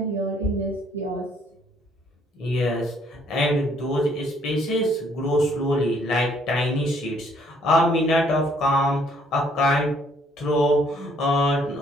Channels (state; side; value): normal; both; correlation 0.65